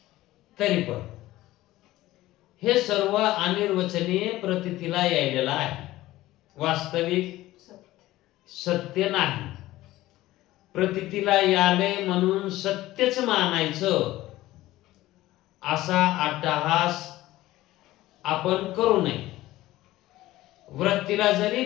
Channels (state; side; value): quieter; right; 16.4 dB